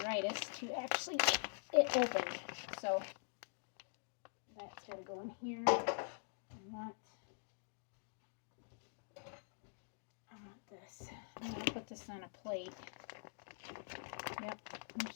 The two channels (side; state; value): right; silent; digital silence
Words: to actually get it opened. So that's gotta go in here. I want this. I'm gonna put this on a plate. Yep, there's